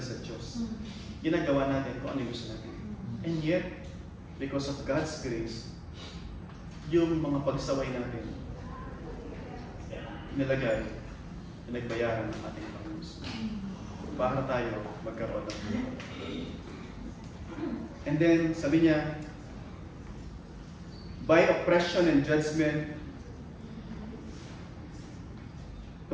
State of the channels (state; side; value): identical; both; correlation 1.00